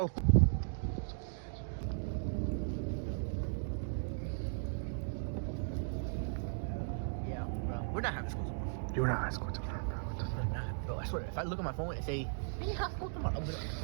Yeah, bro. We're not having school tomorrow. You're not high school tomorrow, bro. What the fuck? Bro, I swear, if I look at my phone and say, we have school tomorrow, I'll be like,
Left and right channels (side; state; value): left; silent; digital silence